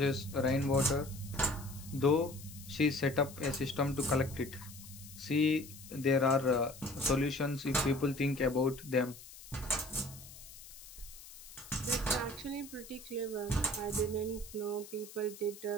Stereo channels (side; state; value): left; noise; hiss, 16 dB below the sound